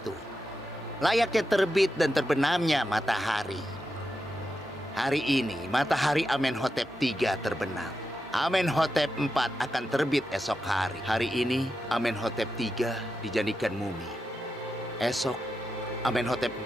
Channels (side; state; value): both; normal; correlation 0.88